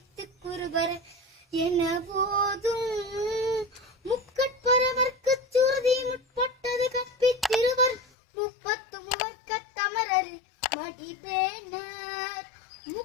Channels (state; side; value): drops out; right; at 8.0 s